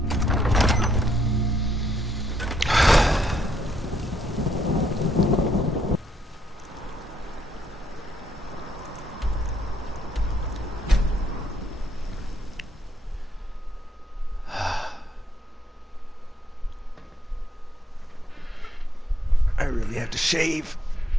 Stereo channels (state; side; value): normal; both; correlation 0.74